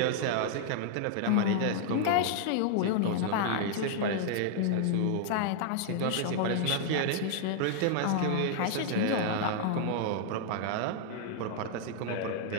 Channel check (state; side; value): different; both; correlation -0.01